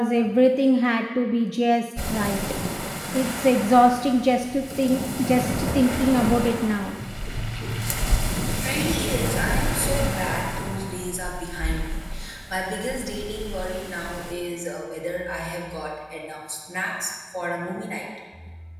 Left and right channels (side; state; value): both; identical; correlation 1.00